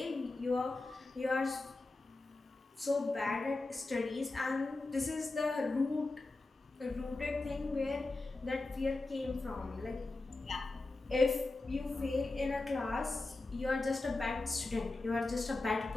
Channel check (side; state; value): right; quieter; 3.2 dB